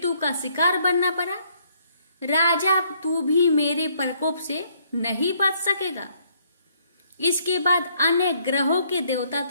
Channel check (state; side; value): inverted; both; correlation -0.67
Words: का शिकार बनना पड़ा। राजा, तू भी मेरे प्रकोप से नहीं बच सकेगा। इसके बाद अन्य ग्रहों के देवता